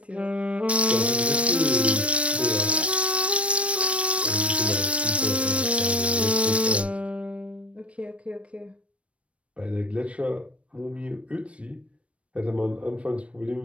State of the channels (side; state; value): left; late; 0.062 ms